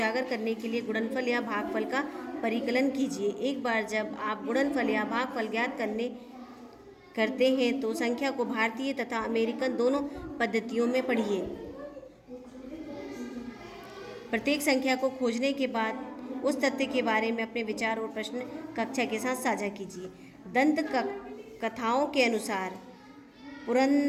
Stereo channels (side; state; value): both; identical; correlation 1.00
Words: करने के लिए गुणनफल या भागफल का परिकलन कीजिए। एक बार जब आप गुणनफल या भागफल ज्ञात करते हैं तो संख्या को भारतीय तथा अमेरिकन दोनों पद्धतियों में पढ़िए। प्रत्येक संख्या को खोजने के बाद उस तथ्य के बारे में अपने विचार और प्रश्न कक्षा के साथ साझा कीजिए। दंत कथाओं के अनुसार